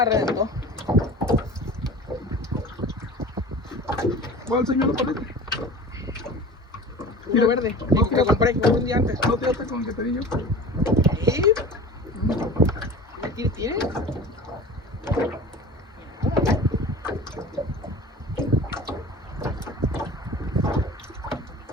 reventó. ¿Cuál señor le parece? Uno verde. No, Que compré un día antes. No tiraste con el que te di yo. ¿Sí? ¿Qué tiene?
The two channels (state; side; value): normal; both; correlation 0.38